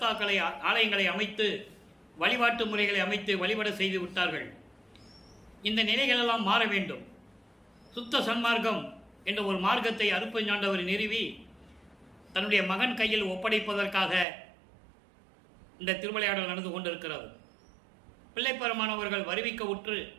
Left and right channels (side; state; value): left; drops out; at 14.2 s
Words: ஆலயங்களை அமைத்து, வழிபாட்டு முறைகளை அமைத்து வழிபட செய்து விட்டார்கள். இந்த நிலைகளெல்லாம் மாற வேண்டும். சுத்த சன்மார்க்கம் என்ற ஒரு மார்க்கத்தை அருட்பெருஞ்சாண்டவர் நிறுவி தன்னுடைய மகன் கையில் ஒப்படைப்பதற்காக இந்த திருவிளையாடல் நடந்து கொண்டிருக்கிறது. பிள்ளைப்பெருமானவர்கள் வருவிக்க உற்று